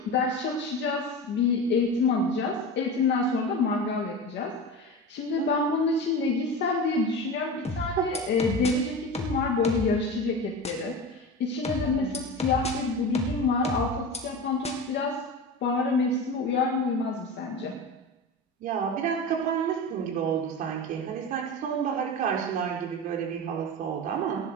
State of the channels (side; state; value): both; normal; correlation 0.27